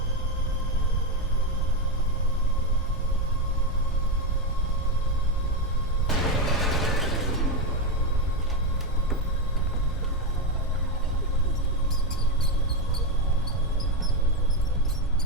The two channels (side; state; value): both; normal; correlation 0.08